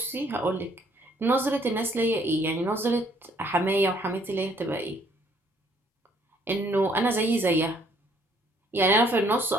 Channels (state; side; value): normal; both; correlation 0.64